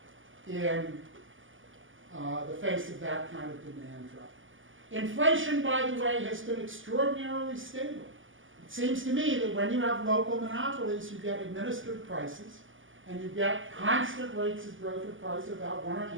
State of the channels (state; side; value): late; left; 0.58 ms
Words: in the face of that kind of demand drop. Inflation, by the way, has been extraordinarily stable. It seems to me that when you have local monopolies, you get administered prices, and you get constant rates of growth of price of about 1.5%